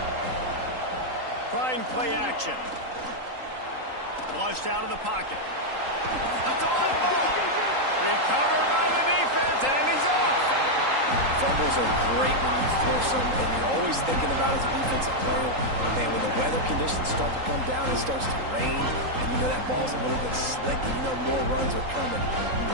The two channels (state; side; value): late; left; 3.8 ms